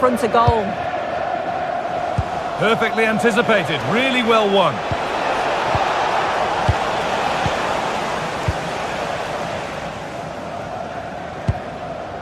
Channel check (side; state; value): both; identical; correlation 1.00